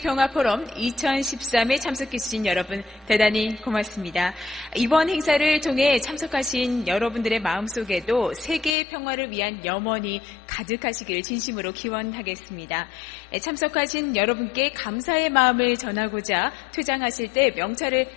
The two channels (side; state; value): right; drops out; at 8.8 s